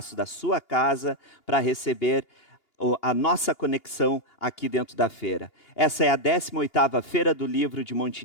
da sua casa para receber a nossa conexão aqui dentro da feira. Essa é a 18ª Feira do Livro de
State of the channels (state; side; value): late; right; 2.8 ms